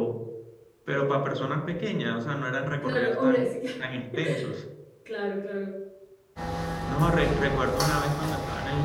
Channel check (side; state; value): both; identical; correlation 1.00